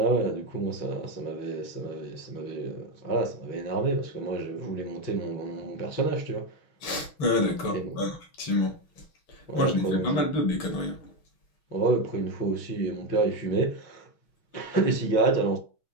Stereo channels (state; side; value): late; right; 6.2 ms